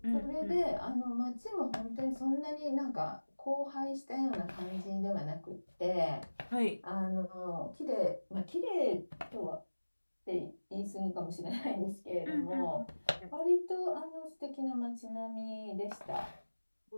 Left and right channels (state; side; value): inverted; both; correlation -1.00